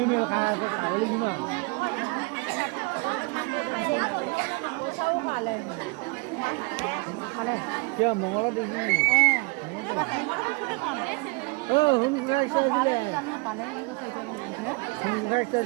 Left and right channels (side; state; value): left; quieter; 28.9 dB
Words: miêu khai có khẩu linh mà. Sâu hỏa lên. 저 뭐가 되지? 흥갈사지래.